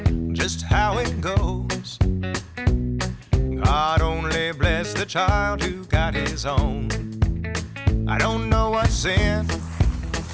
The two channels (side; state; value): both; identical; correlation 1.00